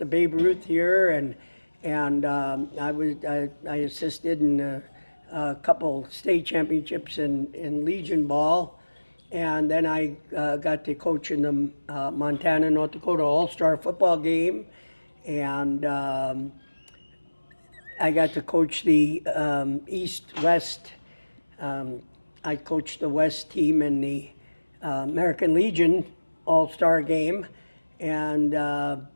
Babe Ruth here, and I assisted in a couple state championships in Legion ball. And then I got to coach in the Montana, North Dakota All-Star football game. And I got to coach the East-West. I coached the West team in the American Legion All-Star game. And I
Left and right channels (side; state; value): both; inverted; correlation -1.00